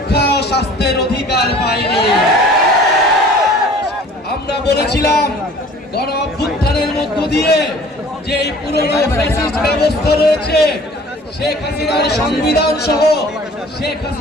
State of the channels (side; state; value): both; normal; correlation 0.49